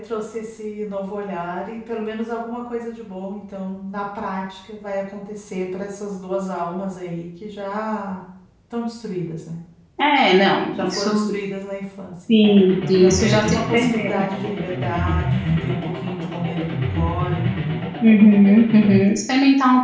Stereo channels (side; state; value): both; identical; correlation 1.00